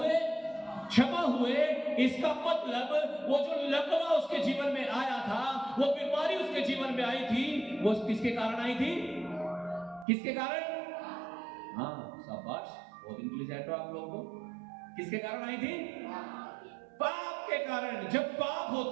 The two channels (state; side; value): drops out; left; at 10.1 s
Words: क्षमा हुए। इसका मतलब वो जो लकवा उसके जीवन में आया था, वो बीमारी उसके जीवन में आई थी, वो किसके कारण आई थी? किसके कारण? हाँ, शाबाश, बहुत इंटेलिजेंट हो आप लोग। को किसके कारण आई थी? पाप के कारण। जब पाप